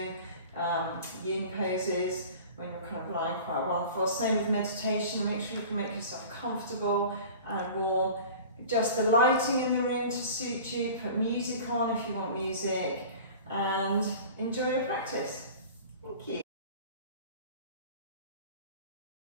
yin poses, when you're kind of lying quite well on the floor. Same with meditation, make sure you can make yourself comfortable and warm. Adjust the lighting in the room to suit you, put music on if you want music, and enjoy your practice. Thank you.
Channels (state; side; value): inverted; both; correlation -0.40